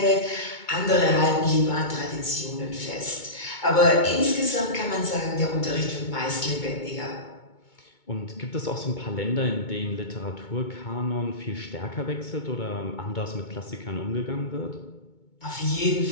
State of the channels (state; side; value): late; right; 2.2 ms